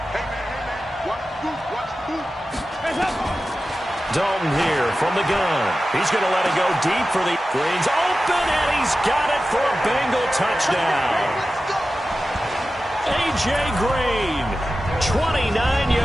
Dalton here from the gun. He's going to let it go deep for the Green's open, and he's got it for a Bengal touchdown. A.J. Green, 29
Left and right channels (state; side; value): normal; both; correlation 0.94